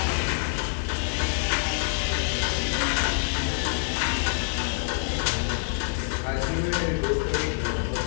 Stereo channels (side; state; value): right; silent; digital silence